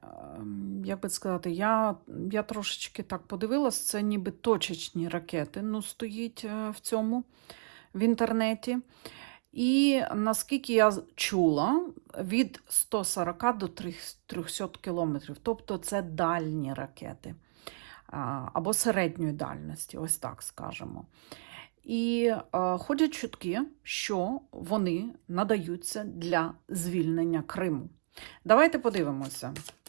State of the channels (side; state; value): left; silent; digital silence